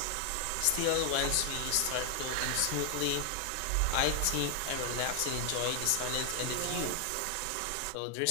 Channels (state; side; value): different; both; correlation 0.00